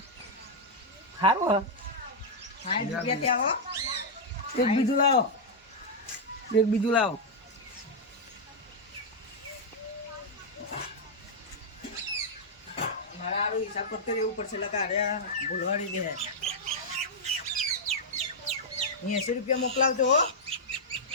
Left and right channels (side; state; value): both; normal; correlation -0.04